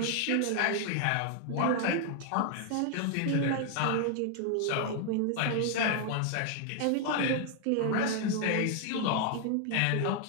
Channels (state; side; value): different; both; correlation 0.00